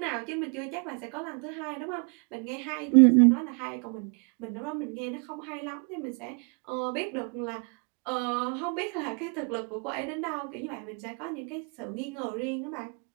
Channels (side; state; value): left; quieter; 38.0 dB